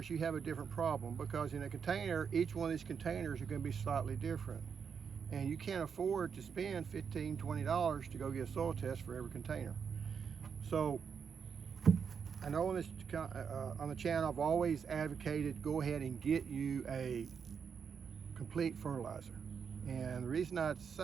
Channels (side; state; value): left; quieter; 6.6 dB